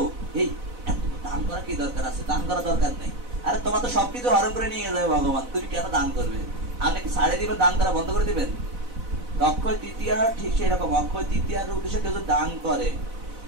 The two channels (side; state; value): left; late; 4.0 ms